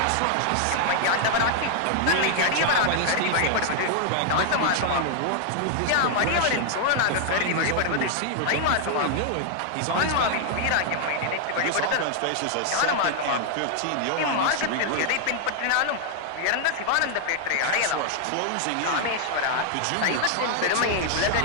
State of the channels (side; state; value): both; different; correlation 0.00